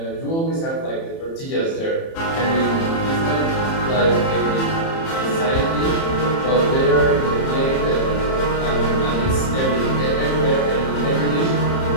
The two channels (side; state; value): right; late; 30 ms